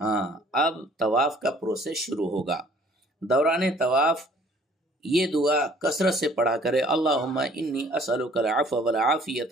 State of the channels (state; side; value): normal; both; correlation 0.56